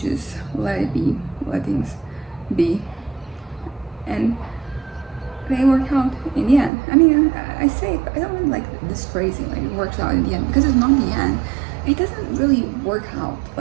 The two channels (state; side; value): drops out; left; at 6.7 s